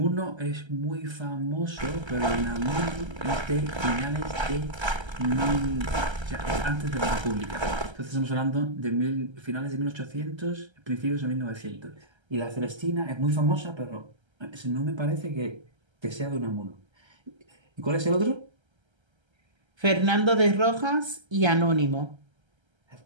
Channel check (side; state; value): left; late; 1.3 ms